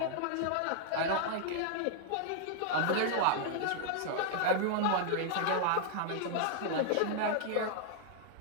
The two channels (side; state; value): both; different; correlation 0.00